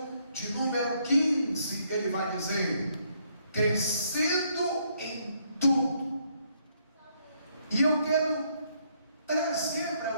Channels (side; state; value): both; inverted; correlation -0.71